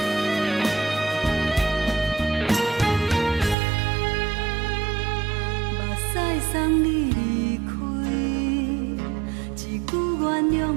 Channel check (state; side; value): drops out; left; at 3.6 s